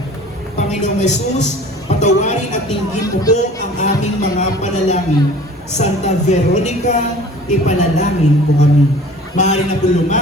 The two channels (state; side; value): normal; both; correlation 0.46